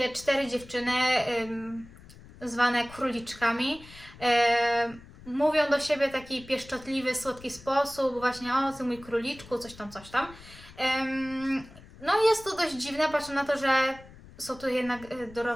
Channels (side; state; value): left; noise; rumble, 20 dB below the sound